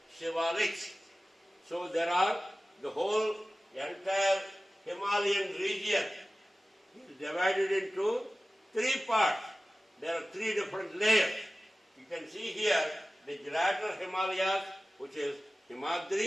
Shivaliks. So there are the whole entire Himalayan region is divided into 3 parts. There are 3 different layers. You can see here the Gibraltar Himalayas, which is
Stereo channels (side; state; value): both; normal; correlation 0.96